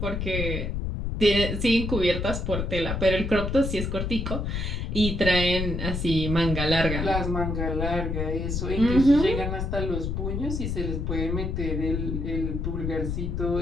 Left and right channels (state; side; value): noise; left; rumble, 2 dB below the sound